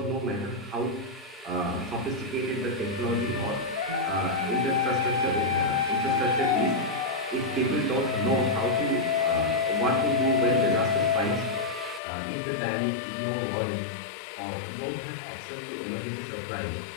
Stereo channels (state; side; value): drops out; right; at 12.0 s